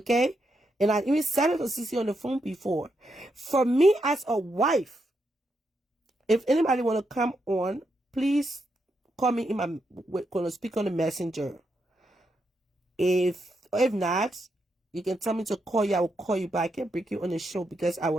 And I even said it to Sissy on the phone before. For me as a wife, if anybody want to come on, please call me in my, going to speak on the messenger. If not, you can tell me to call you. I will call you back and bring you on the show because I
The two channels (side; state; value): both; normal; correlation 0.82